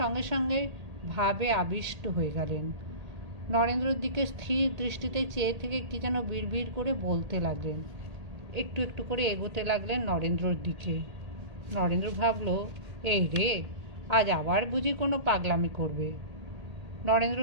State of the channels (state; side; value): late; left; 1.8 ms